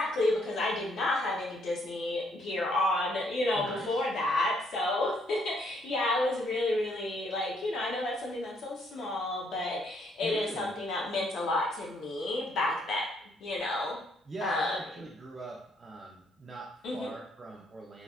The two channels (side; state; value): both; normal; correlation 0.70